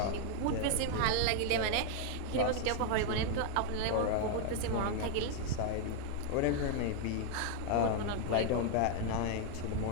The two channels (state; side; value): different; both; correlation 0.00